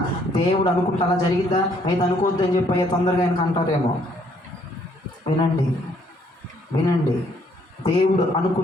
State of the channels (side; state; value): both; normal; correlation 0.66